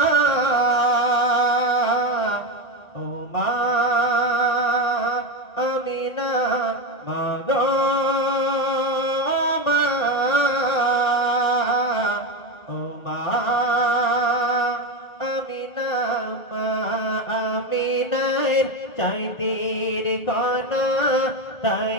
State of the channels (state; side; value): late; right; 1.5 ms